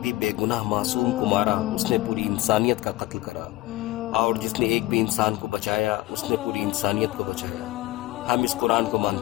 बेगुनाह मासूम को मारा उसने पूरी इंसानियत का कत्ल करा, और जिसने एक भी इंसान को बचाया उसने पूरी इंसानियत को बचाया। हम इस कुरान को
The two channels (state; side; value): quieter; right; 18.3 dB